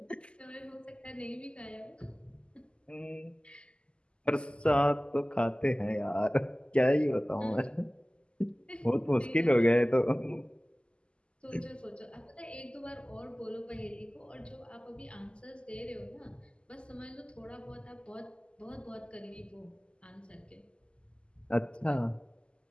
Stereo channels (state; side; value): late; right; 0.051 ms